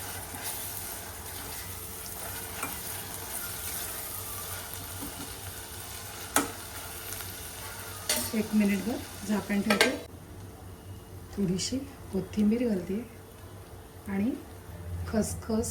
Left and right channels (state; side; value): identical; both; correlation 1.00